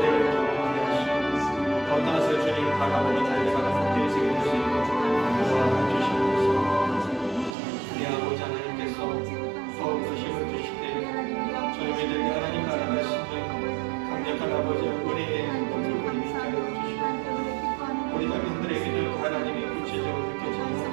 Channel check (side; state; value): left; drops out; at 7.6 s